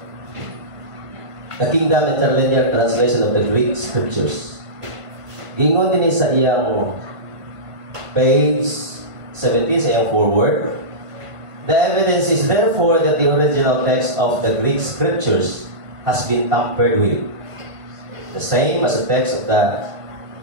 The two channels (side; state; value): left; late; 1.5 ms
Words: the Kingdom Interlinear Translation of the Greek Scriptures. Gingon din sa iyang page 17 sa iyang forward. The evidence is therefore that the original text of the Greek Scriptures has been tampered with. The same as the text of the